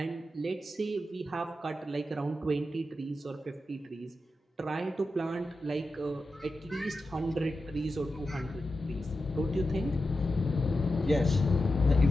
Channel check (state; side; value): normal; both; correlation 0.90